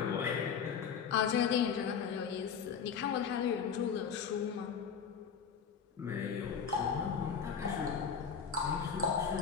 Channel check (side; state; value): right; quieter; 6.9 dB